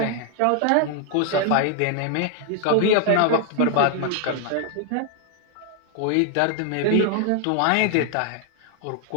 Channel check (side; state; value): both; different; correlation 0.00